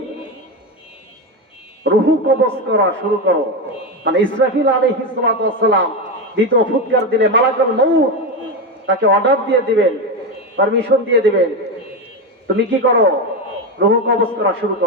রূহ কবজ করা শুরু করো। মানে ইসরাফিল আলাইহিস সালাতু ওয়াস সালাম দ্বিতীয় ফুৎকার দিলে মালাকুল মউত তাকে অর্ডার দিয়ে দিবেন, পারমিশন দিয়ে দিবেন, তুমি কি করো? রূহ কবজ করা শুরু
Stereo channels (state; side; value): normal; both; correlation 0.14